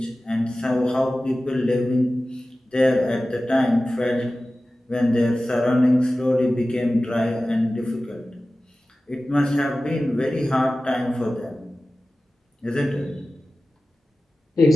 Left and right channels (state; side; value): normal; both; correlation 0.96